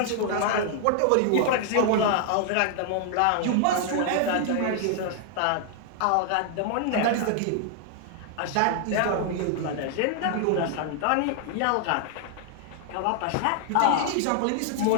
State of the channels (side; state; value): both; different; correlation 0.00